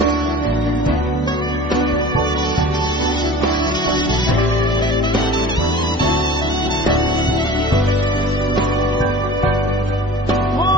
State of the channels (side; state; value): both; normal; correlation 0.41